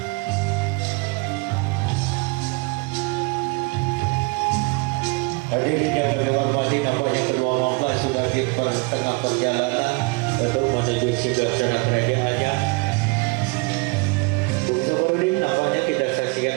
Hadirin yang kami hormati, nampaknya kedua mempelai sudah di tengah perjalanan untuk menuju singgasana kerajaannya. Sebelum nampaknya kita saksikan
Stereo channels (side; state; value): left; quieter; 28.4 dB